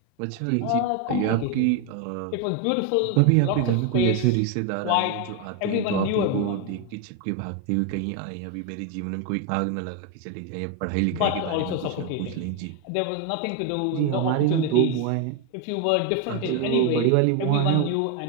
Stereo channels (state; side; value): different; both; correlation 0.01